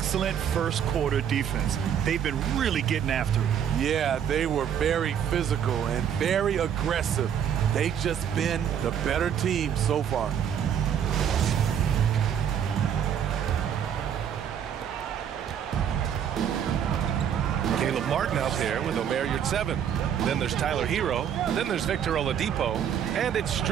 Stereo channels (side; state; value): left; quieter; 8.8 dB